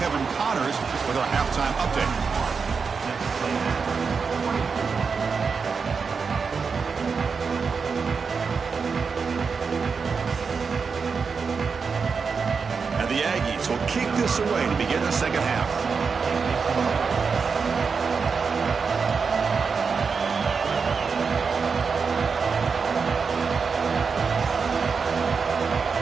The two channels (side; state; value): left; quieter; 5.4 dB